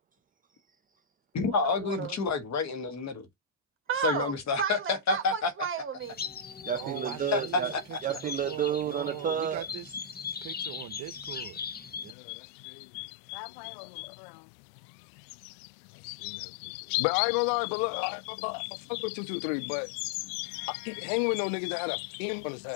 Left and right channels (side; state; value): right; drops out; at 12.2 s